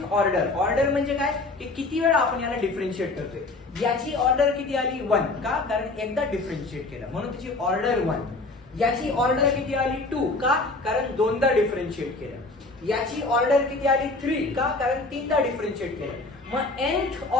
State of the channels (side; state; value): right; quieter; 3.3 dB